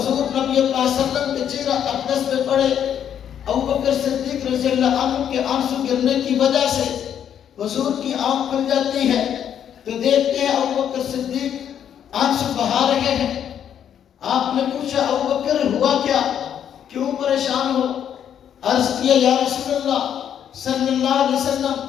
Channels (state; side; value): quieter; right; 9.2 dB